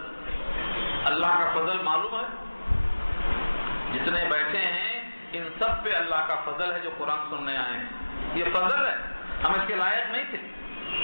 اللہ کا فضل معلوم ہے، جتنے بیٹھے ہیں ان سب پہ اللہ کا فضل ہے جو قرآن سننے آئے ہیں، یہ فضل ہے، ہم اس کے لائق نہیں تھے،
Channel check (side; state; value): both; inverted; correlation -1.00